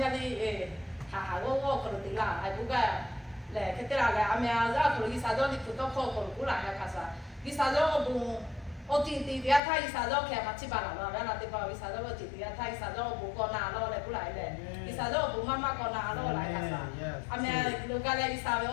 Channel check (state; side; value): drops out; right; at 9.6 s